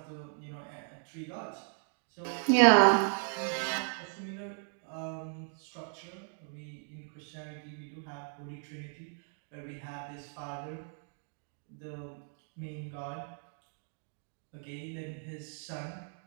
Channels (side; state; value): left; silent; 54 dB below the other